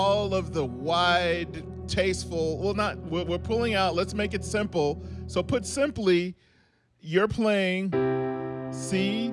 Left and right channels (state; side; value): identical; both; correlation 1.00